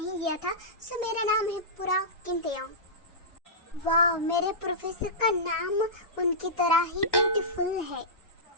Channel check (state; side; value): late; right; 1.1 ms